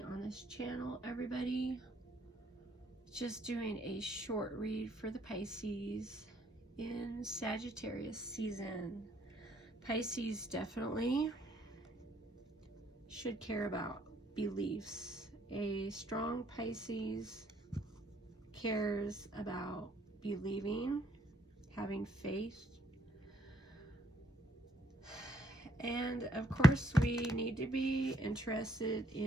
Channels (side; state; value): both; normal; correlation 0.68